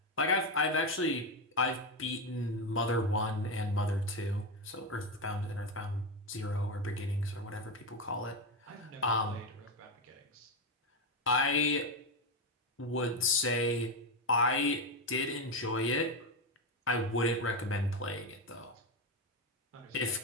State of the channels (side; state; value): both; normal; correlation 0.10